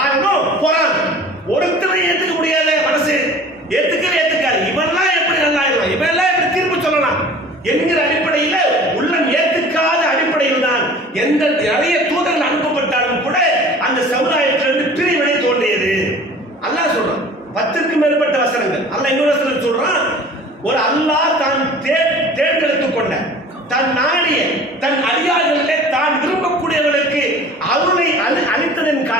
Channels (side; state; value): both; normal; correlation 0.44